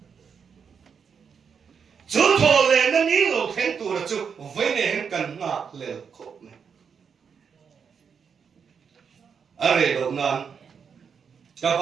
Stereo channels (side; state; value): left; quieter; 6.5 dB